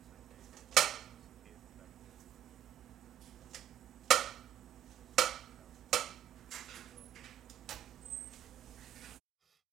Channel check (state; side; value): quieter; left; 11.3 dB